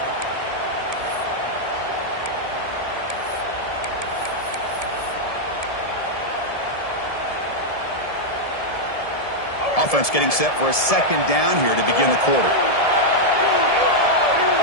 Offense getting set for a second down here to begin the quarter.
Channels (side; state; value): right; late; 1.7 ms